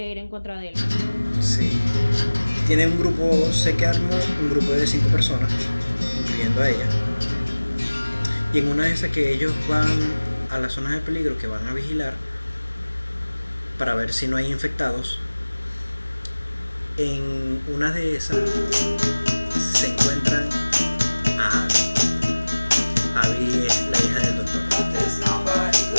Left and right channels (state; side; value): inverted; both; correlation -1.00